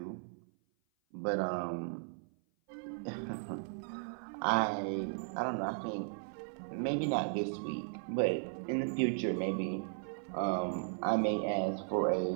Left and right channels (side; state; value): left; silent; 54 dB below the other